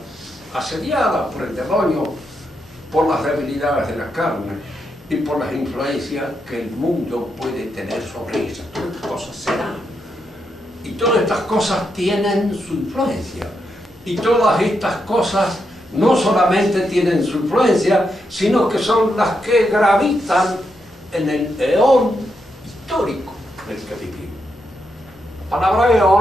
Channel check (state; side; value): normal; both; correlation 0.82